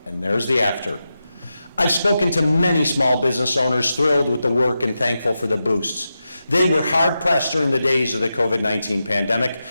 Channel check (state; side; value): inverted; both; correlation -0.90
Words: and there's the after. I've spoken to many small business owners thrilled with the work and thankful for the boosts. They were hard-pressed during the days of the COVID-19 pandemic,